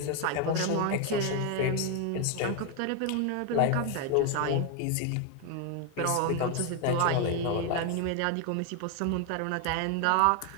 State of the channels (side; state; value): both; different; correlation 0.01